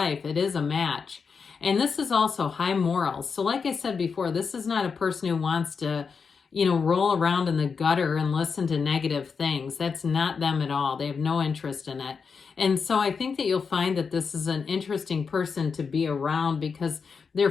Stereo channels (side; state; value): right; quieter; 5.6 dB